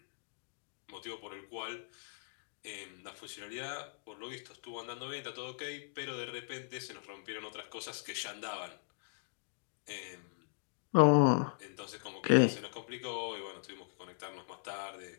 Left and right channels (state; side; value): silent; right; digital silence